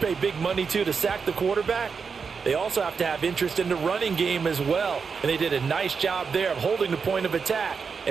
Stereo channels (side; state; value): left; quieter; 5.6 dB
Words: big money to sack the quarterback, they also have to have interest in the running game as well. And they did a nice job there of holding the point of attack